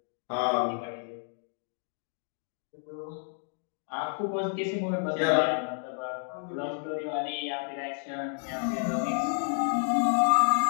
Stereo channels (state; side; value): silent; right; 58 dB below the other